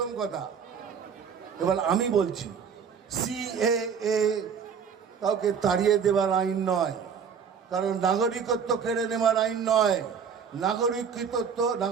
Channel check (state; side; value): quieter; left; 6.8 dB